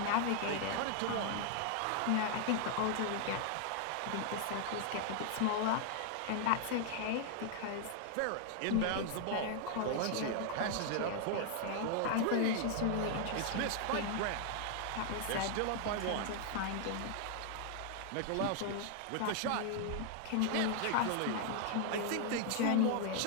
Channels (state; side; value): different; both; correlation 0.00